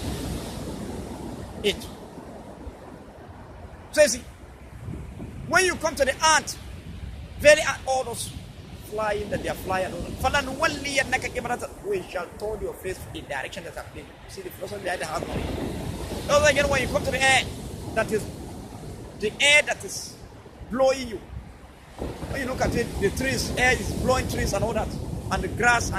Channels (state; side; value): identical; both; correlation 1.00